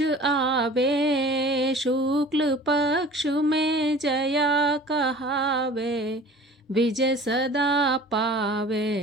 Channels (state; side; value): normal; both; correlation 0.44